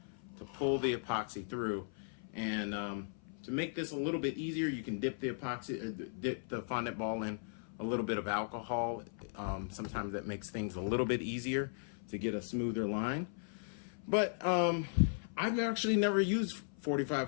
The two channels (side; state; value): right; silent; 53 dB below the other